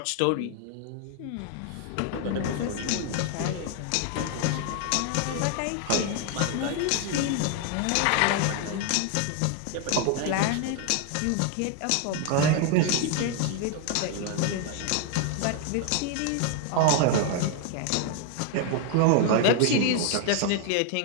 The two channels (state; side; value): different; both; correlation 0.00